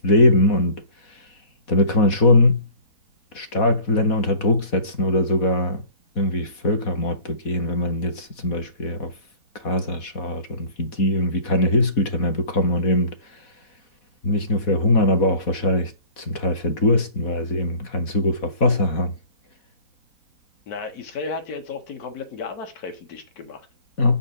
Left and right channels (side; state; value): right; late; 4.1 ms